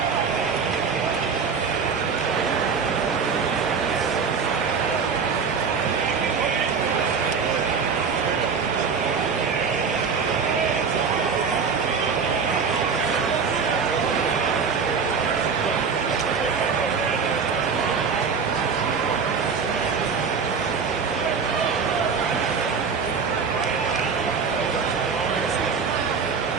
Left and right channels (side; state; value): left; quieter; 5.7 dB